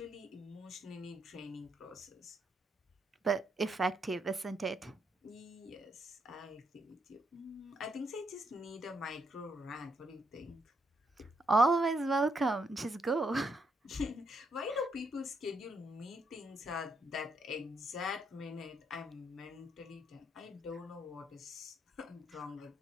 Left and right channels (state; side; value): normal; both; correlation 0.77